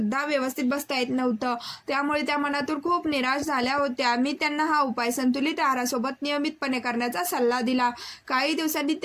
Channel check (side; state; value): both; identical; correlation 1.00